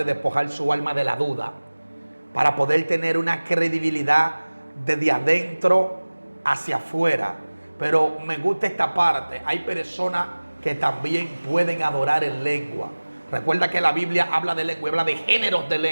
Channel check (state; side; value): inverted; both; correlation -1.00